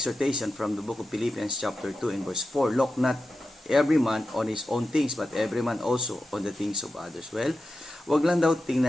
from the book of Philippians chapter 2 and verse 4. Look not every man on his own things, but every man also on the things of others. Well, wag lang daw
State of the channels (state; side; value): normal; both; correlation 0.91